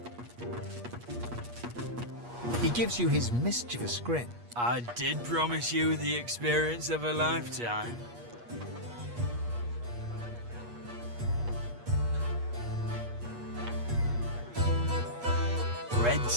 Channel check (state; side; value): late; left; 8.4 ms